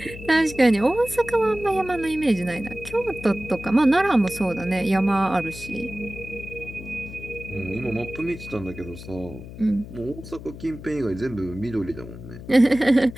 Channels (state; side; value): noise; left; hum, 13 dB below the sound